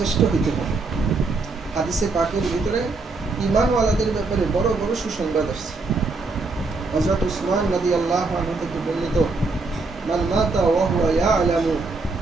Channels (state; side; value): quieter; left; 3.7 dB